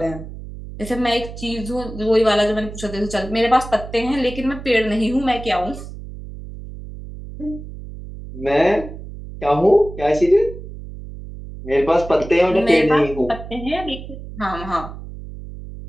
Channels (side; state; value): right; noise; hum, 12 dB below the sound